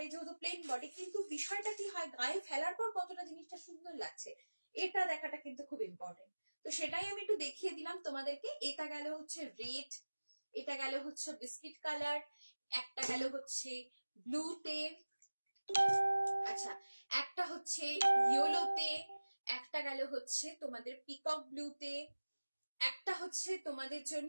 যেহেতু প্লেন বডি, কিন্তু বিষয়টা কি হয়, গায়ে ফেলার পর কতটা জিনিসটা সুন্দর লাগছে এটা দেখাটা কিন্তু খুব ইম্পর্টেন্ট। তো সেটাই আমি একটু দেখিয়ে দিলাম তোমাদেরকে। এটা গেল হচ্ছে রেড, এটা গেল হচ্ছে বিস্কিট কালার, একটা গেল হচ্ছে ব্লুতে, আচ্ছা একটা হচ্ছে ইয়েলোতে, একটা গেল হচ্ছে তোমাদের পিকক ব্লুতে, একটা হচ্ছে তোমাদের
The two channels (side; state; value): both; inverted; correlation -1.00